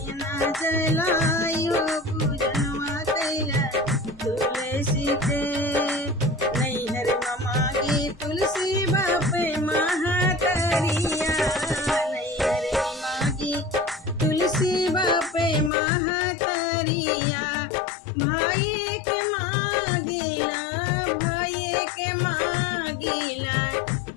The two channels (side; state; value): right; drops out; at 15.7 s